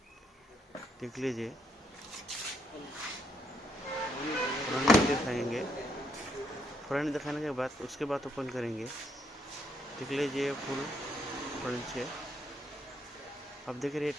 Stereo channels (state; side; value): normal; both; correlation 0.75